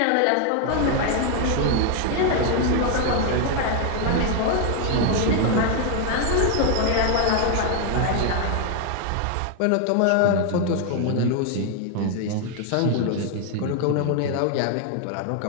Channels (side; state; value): both; different; correlation 0.00